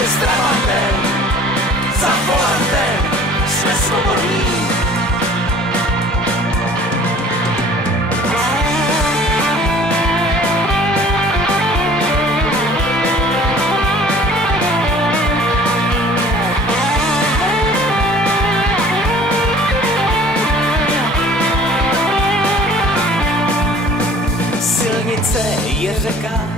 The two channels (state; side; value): normal; both; correlation 0.49